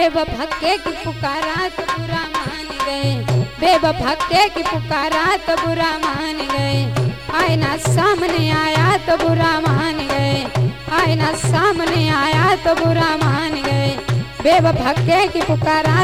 के की पुकारा तो बुरा मान गए, बेवफा के की पुकारा तो बुरा मान गए, आईना सामने आया तो बुरा मान गए, आईना सामने आया तो बुरा मान गए। बेवफा के की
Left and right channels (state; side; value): identical; both; correlation 1.00